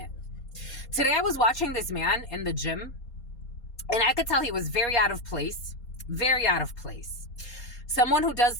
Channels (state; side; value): late; right; 4.2 ms